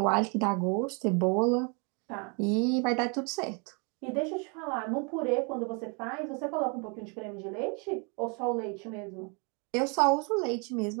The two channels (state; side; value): quieter; left; 34.1 dB